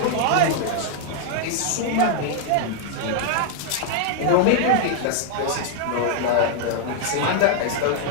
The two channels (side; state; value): both; different; correlation 0.00